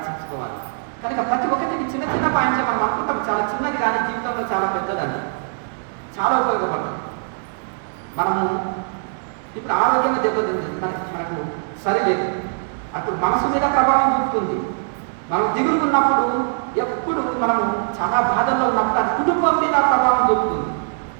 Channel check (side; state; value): left; silent; digital silence